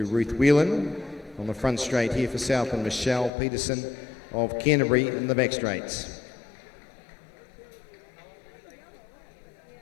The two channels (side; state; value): right; drops out; at 3.3 s